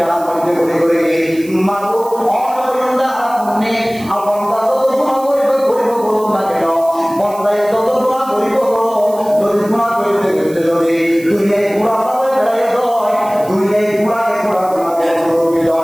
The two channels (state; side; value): noise; right; hiss, 20 dB below the sound